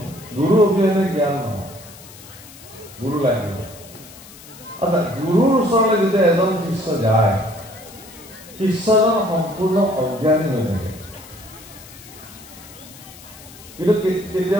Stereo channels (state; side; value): noise; left; hiss, 19 dB below the sound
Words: গুৰু অবিহনে জ্ঞান নহয়। গুৰু লাগিব। আচ্ছা, গুৰুৰ ওচৰলৈ যেতিয়া এজন শিষ্য যায়, শিষ্যজন সম্পূৰ্ণ অজ্ঞানী হৈ থাকে। কিন্তু